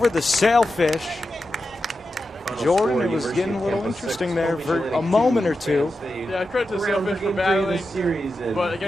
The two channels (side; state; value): both; normal; correlation 0.90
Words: the Sailfish. Jordan, it was getting a little interesting there for a moment or two. Yeah, credit to the Sailfish for battling, but